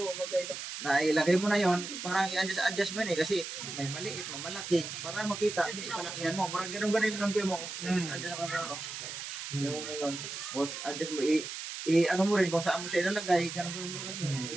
mo na yon, parang i-adjust mo yun kasi may maliit, may malaki. Para makita, palakihan mo. Parang ganun-ganun yung lang mo. Adjust mo na. Yung adjust mo. Ano mo rin, kung saan mo siya ilalagay, ganun-ganun mo rin.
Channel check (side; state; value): right; noise; hiss, 7 dB below the sound